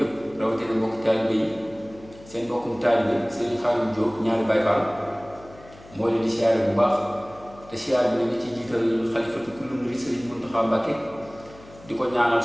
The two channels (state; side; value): noise; left; hum, 22 dB below the sound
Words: rawati na mbokk talibé yi seen mbokkum talibé Serigne Khadim Diop ñaari Baye Fall mo leen di siyaare bu baax te siyaare bi ni ci jiital xalifatu kullu murid Serigne Mountakha Mbacké diko ñaanal